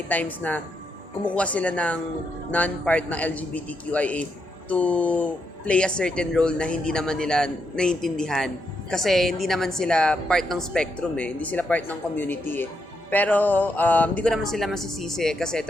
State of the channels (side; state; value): both; normal; correlation 0.81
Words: times na kumukuha sila ng non-part ng LGBTQIA to play a certain role na hindi naman nila naiintindihan. Kasi hindi naman sila part ng spectrum hindi sila part ng community Pero hindi ko naman sila masisisi kasi